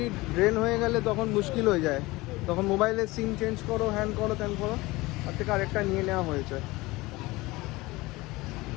ড্রেন হয়ে গেলে তখন মুশকিল হয়ে যায়, তখন মোবাইলের সিম চেঞ্জ করো, হ্যান করো, ত্যান করো, তার থেকে আরেকটা নিয়ে নেওয়া হয়েছে।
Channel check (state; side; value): quieter; right; 21.1 dB